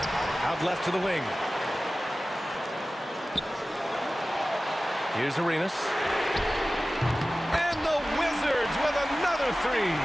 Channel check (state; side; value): normal; both; correlation 0.96